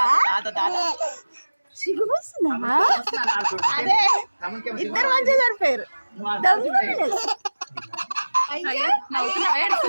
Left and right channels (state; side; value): inverted; both; correlation -1.00